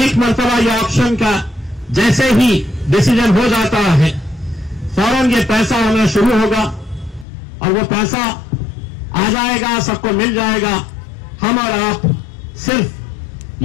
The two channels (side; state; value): right; drops out; at 7.2 s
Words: मर्तबा ये ऑप्शन का जैसे ही डिसीजन हो जाता है फौरन ये पैसा आना शुरू होगा और वो पैसा आ जाएगा, सबको मिल जाएगा। हम और आप सिर्फ